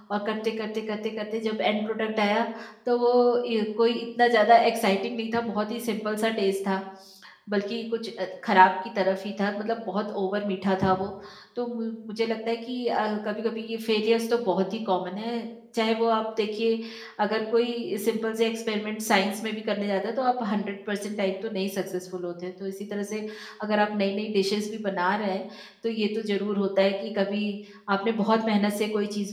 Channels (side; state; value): both; identical; correlation 1.00